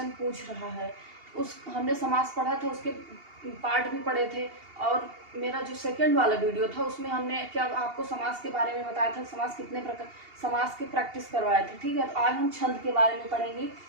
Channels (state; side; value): late; left; 2.8 ms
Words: पूछ रहा है। हमने समास पढ़ा था, उसके पार्ट भी पढ़े थे। और मेरा जो सेकंड वाला वीडियो था उसमें हमने क्या आपको समास के बारे में बताया था, समास कितने प्रकार, समास के प्रैक्टिस करवाए थे। ठीक है, तो आज हम छंद के बारे में पढ़ेंगे